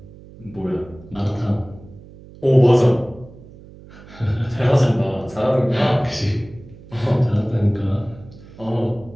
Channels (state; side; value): noise; right; hum, 20 dB below the sound